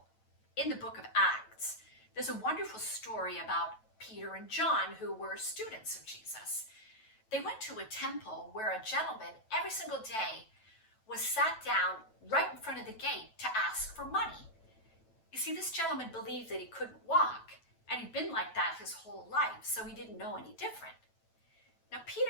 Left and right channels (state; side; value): late; right; 9.1 ms